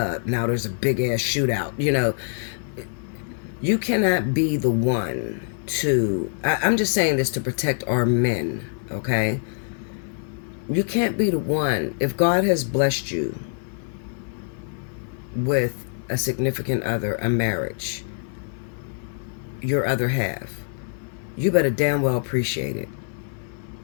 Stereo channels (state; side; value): silent; right; digital silence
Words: Now there's a big ass shootout. You know, you cannot be the one to, I'm just saying this to protect our men, okay? You can't be the one. If God has blessed you with a significant other, a marriage, your other half, you better damn well appreciate it.